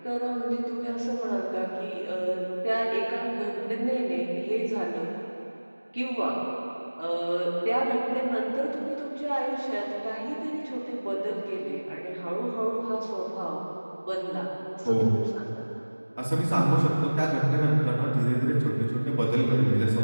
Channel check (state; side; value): inverted; both; correlation -1.00